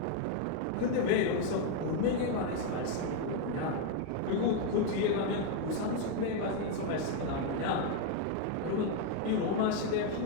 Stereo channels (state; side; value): different; both; correlation 0.01